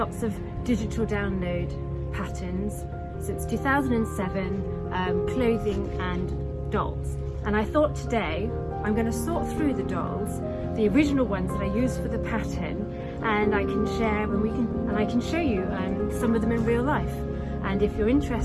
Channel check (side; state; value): both; identical; correlation 1.00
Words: of digital download patterns since 2007, clothing and dolls. And I thought today I'm going to sort through the dolls, the original ones that I used for the pattern, and I can share I can show you some of them in real life. And if you're